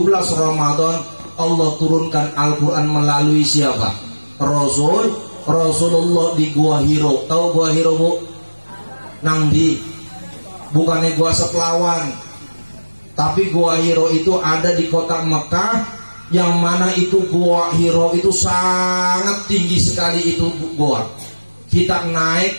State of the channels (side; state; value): both; inverted; correlation -1.00